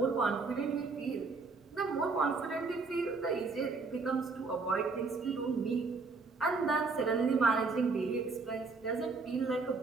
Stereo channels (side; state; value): left; quieter; 4.2 dB